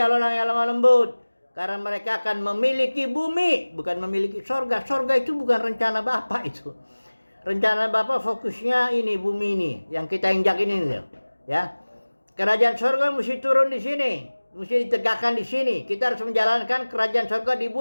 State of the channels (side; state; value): both; inverted; correlation -1.00